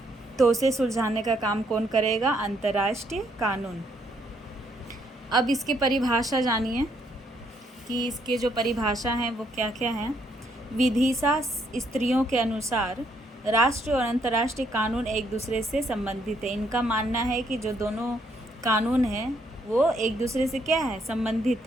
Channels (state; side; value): normal; both; correlation 0.71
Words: तो उसे सुलझाने का काम कौन करेगा, अंतर्राष्ट्रीय कानून। अब इसकी परिभाषा जानिए कि इसके जो परिभाषा हैं वो क्या क्या हैं। विधिसा स्त्रियों के अनुसार राष्ट्रीय और अंतर्राष्ट्रीय कानून एक दूसरे से संबंधित है। इनका मानना है कि जो दोनों कानून हैं वो एक दूसरे से क्या है,